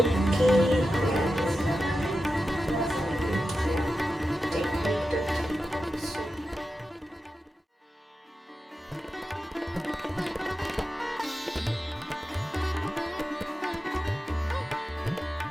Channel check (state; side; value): normal; both; correlation 0.91